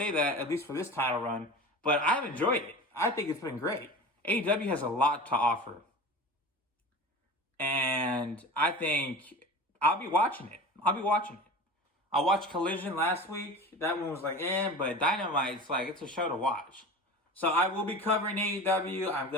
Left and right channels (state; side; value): normal; both; correlation 0.34